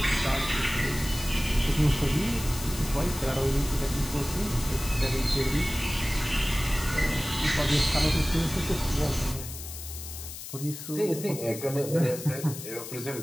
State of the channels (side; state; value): left; noise; hiss, 10 dB below the sound